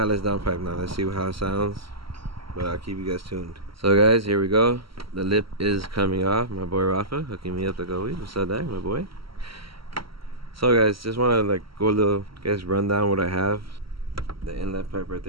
downpipe now. Let's see how it sounds, but I'll keep you guys tuned. So guys, here we go. The lip is coming off. My boy Rafa hooking me up like always. What's up, Dag, my boy? So guys, just want to like go a little, guys, run down what I have. The inlet pipe right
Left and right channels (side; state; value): left; late; 0.75 ms